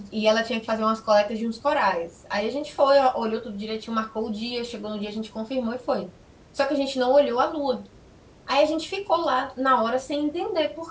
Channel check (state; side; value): identical; both; correlation 1.00